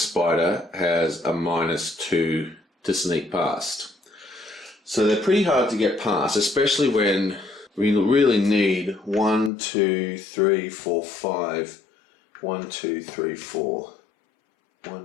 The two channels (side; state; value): right; drops out; at 9.5 s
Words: has a -2 to sneak past. So they're pretty hard to get past, especially when we really need 1, 2, 3, 4, 5. 1, 2, 3, 4.